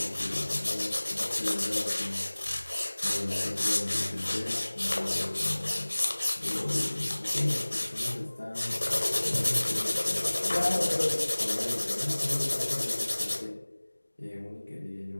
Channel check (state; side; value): inverted; both; correlation -1.00